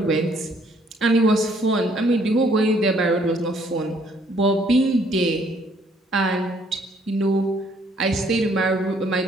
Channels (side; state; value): both; normal; correlation 0.65